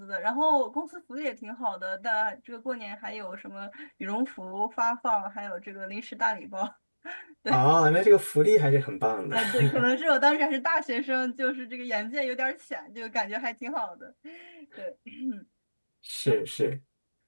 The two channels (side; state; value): both; inverted; correlation -1.00